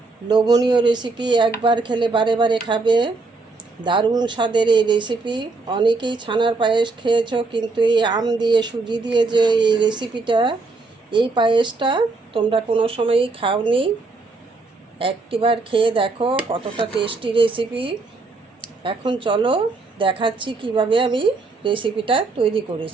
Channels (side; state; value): left; quieter; 3.7 dB